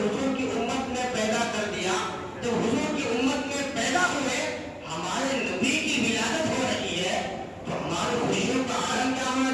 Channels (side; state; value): both; identical; correlation 1.00